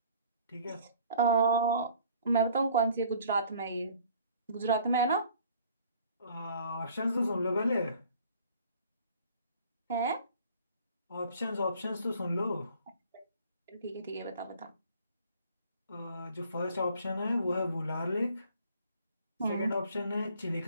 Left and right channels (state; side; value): inverted; both; correlation -0.54